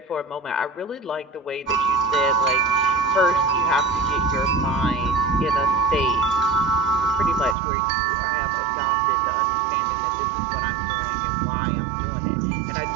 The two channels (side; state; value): left; drops out; at 7.6 s